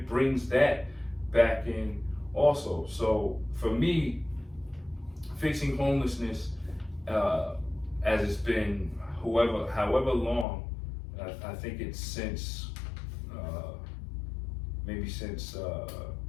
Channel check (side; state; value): right; drops out; at 10.5 s